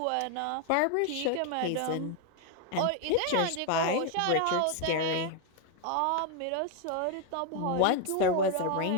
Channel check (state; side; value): different; both; correlation 0.01